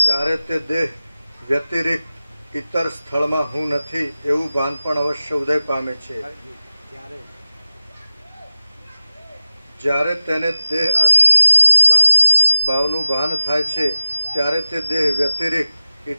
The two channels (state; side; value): inverted; both; correlation -0.93